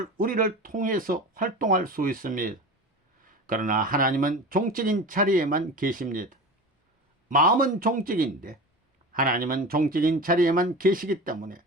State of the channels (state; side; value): normal; both; correlation 0.31